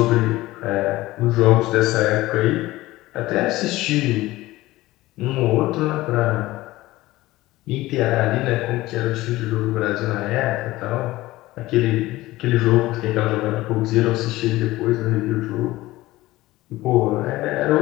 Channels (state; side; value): quieter; right; 17.9 dB